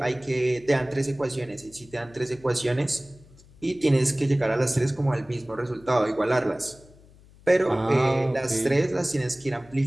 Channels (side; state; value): left; noise; hum, 25 dB below the sound